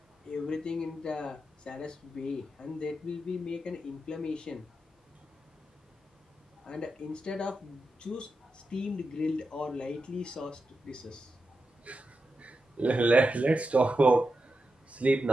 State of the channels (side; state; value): both; normal; correlation 0.88